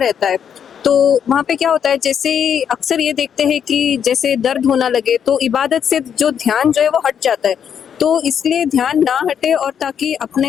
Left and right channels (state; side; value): quieter; right; 8.1 dB